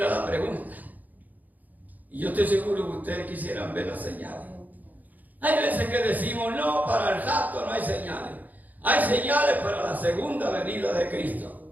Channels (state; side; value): late; left; 0.081 ms